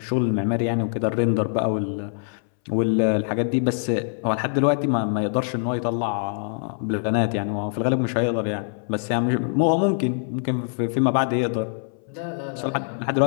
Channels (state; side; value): silent; right; 62 dB below the other